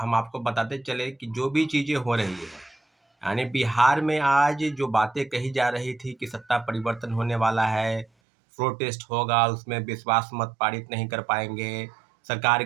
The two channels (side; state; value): left; drops out; at 8.1 s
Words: आपको बताते चले कि जो भी चीज़ें हो रही है, यानी बिहार में आज जो बातें कही जा रही थी कि सत्ता परिवर्तन होने वाला है, प्रोटेस्ट होगा, उसमें विश्वास मत पारित नहीं कर पाएंगे, सरकार